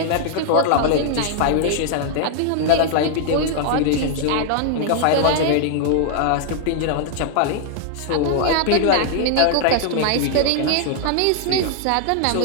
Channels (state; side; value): different; both; correlation -0.01